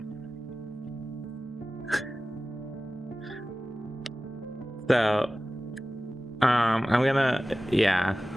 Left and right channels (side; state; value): both; normal; correlation 0.96